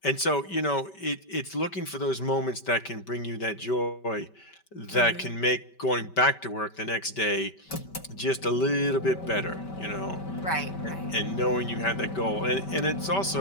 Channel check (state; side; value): late; right; 5.2 ms